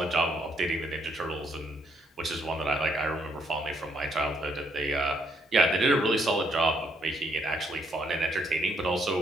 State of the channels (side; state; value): both; normal; correlation 0.72